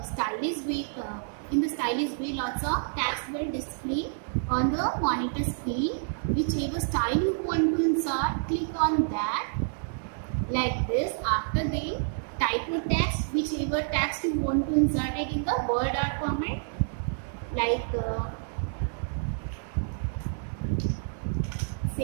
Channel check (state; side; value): silent; left; digital silence